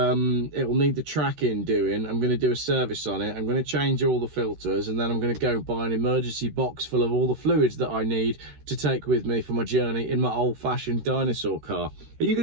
will need the tracking doing. I'm going to do a service on it. I'm going to change all the filters, and then I'm going to go buy an emergency box full of all the fluids that I need to take with me for my journey in my old-fashioned dinosaur car. Are you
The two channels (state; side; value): late; left; 13 ms